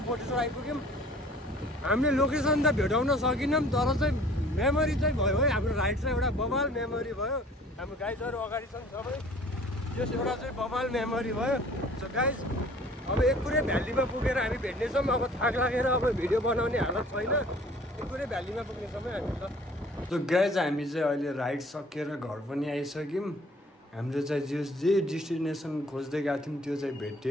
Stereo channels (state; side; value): normal; both; correlation 0.52